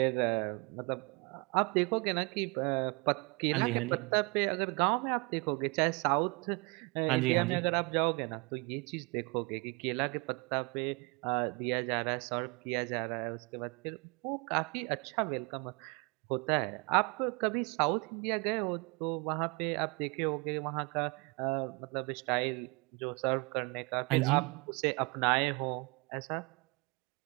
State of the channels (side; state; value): left; quieter; 29.7 dB